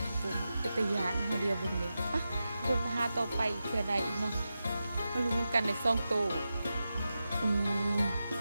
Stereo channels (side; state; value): both; inverted; correlation -0.91